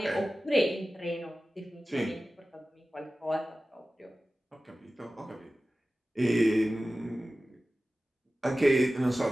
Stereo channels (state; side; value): normal; both; correlation 0.96